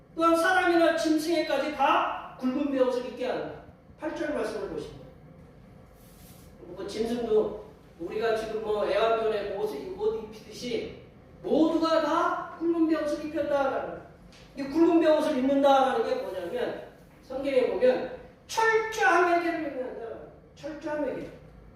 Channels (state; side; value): identical; both; correlation 1.00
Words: 또한 사람이나 짐승에까지 다 굵은 베옷을 입게 한다. 8절 말씀을 보시면 뭐 짐승도 우리가 지금 뭐 애완견에 옷 입히듯이 모두가 다 굵은 베옷을 입혔다라는 이 굵은 베옷을 입는다라는 게 뭐냐면 성경에 보면 철저한 회개를 의미한다. 철저한 회개.